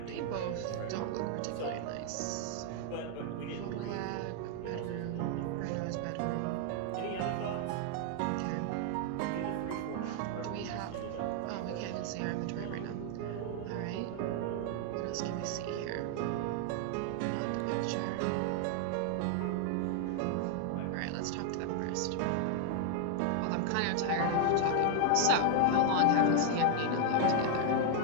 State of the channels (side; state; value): both; different; correlation 0.00